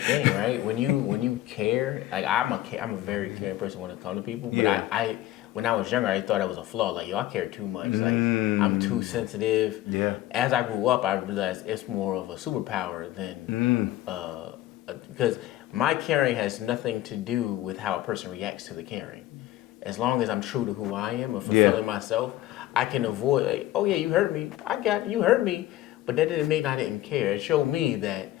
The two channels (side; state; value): right; quieter; 14.9 dB